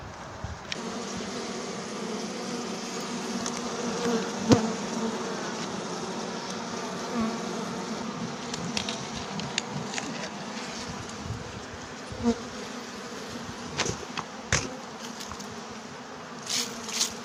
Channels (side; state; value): both; identical; correlation 1.00